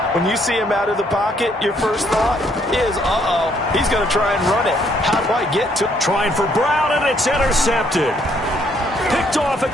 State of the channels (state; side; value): normal; both; correlation 0.68